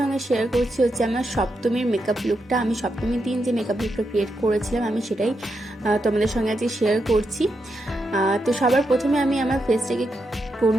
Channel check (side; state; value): both; normal; correlation 0.84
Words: শেয়ার করছি আমার সপ্তমীর মেকআপ লুকটা। আমি সপ্তমীর দিন যে মেকআপ লুকটা ক্রিয়েট করেছিলাম আমি সেটাই তোমাদের সঙ্গে আজকে শেয়ার করছি। তো সবার প্রথমে আমি আমার ফেসটাকে